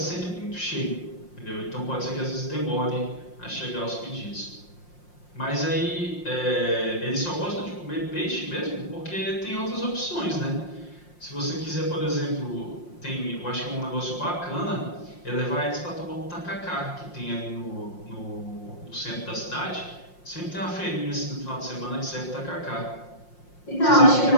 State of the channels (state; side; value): late; right; 5.6 ms